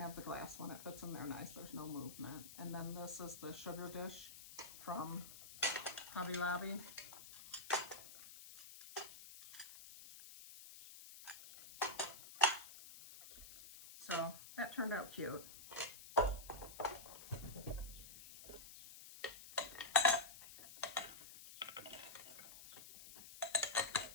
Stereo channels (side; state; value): left; noise; hiss, 14 dB below the sound